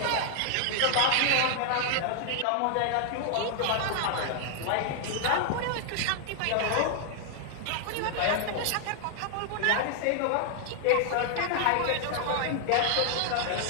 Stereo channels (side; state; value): both; different; correlation 0.00